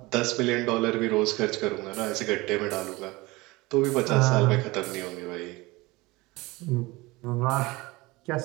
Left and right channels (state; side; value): quieter; left; 22.0 dB